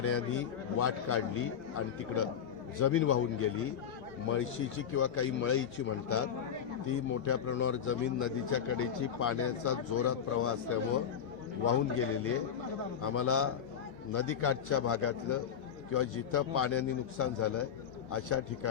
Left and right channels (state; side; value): quieter; right; 8.3 dB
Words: वाट काढली आणि तिकडं जमीन वाहून गेली. मळशीची किंवा काही मळईची म्हणतात ती मोठ्या प्रमाणावर जमीन नदीच्या कडेची पाण्याचा जोरात प्रवाह असल्यामुळं वाहून गेलेली आहे. आम्हाला नदीकाठच्या भागातलं किंवा जिथं पाण्याने नुकसान झालं अशा